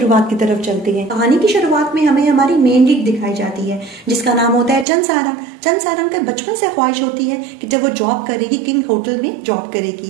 की तरफ चलते हैं। कहानी की शुरुआत में हमें हमारी मेन लीड दिखाई जाती है जिसका नाम होता है चंद सारंग। चंद सारंग का बचपन से ख्वाहिश होती है कि जब वो जॉब करेगी किंग होटल में जॉब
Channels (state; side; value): drops out; left; at 4.9 s